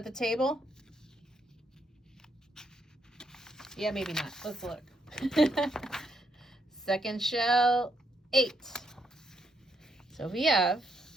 the table? Yeah, maybe not. Let's look. Second shell, 8. So we have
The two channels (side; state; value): both; normal; correlation 0.76